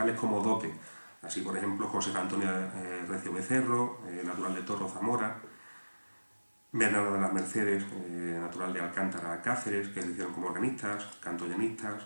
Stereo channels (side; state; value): both; inverted; correlation -1.00